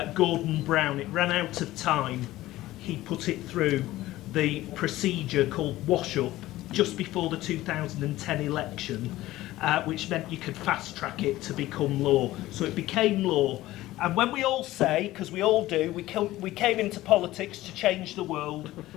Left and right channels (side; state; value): right; quieter; 16.4 dB